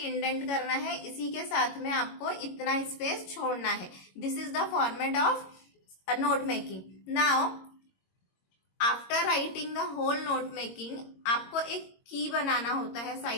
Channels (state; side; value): late; right; 22 ms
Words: इंडेंट करना है, इसी के साथ में आपको इतना स्पेस छोड़ना है. This is the format of note making. Now after writing the whole note making, आपको एक की बनाना होता है,